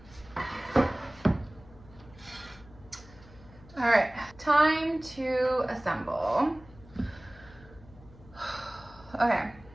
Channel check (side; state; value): left; noise; hum, 22 dB below the sound